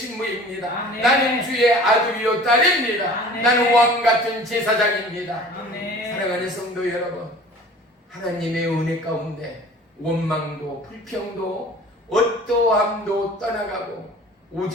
아멘. 나는 주의 아들이요 딸입니다. 아멘. 나는 왕같은 제사장입니다. 아멘. 사랑하는 성도 여러분, 하나님의 은혜 가운데 원망도 불평도 어떠함도 떠나가고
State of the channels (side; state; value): both; normal; correlation 0.44